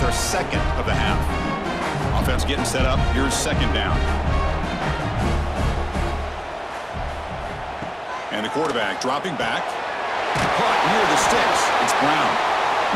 their 2nd of the half. Offense getting set up. Here's 2nd down. And the quarterback dropping back. Caught near the sticks. It's Brown.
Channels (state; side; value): identical; both; correlation 1.00